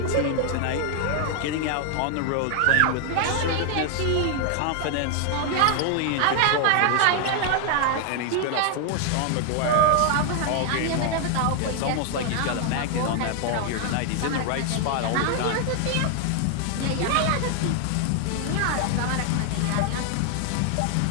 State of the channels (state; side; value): different; both; correlation 0.00